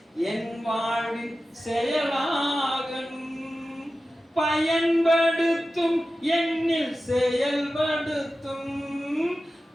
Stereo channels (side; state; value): both; normal; correlation 0.94